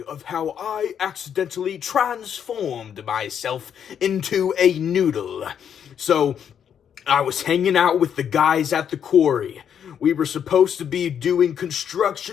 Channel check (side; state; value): right; quieter; 8.4 dB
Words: of how I accidentally transformed myself into a noodle. So, I was hanging out with the guys at the quarry. We were supposed to be doing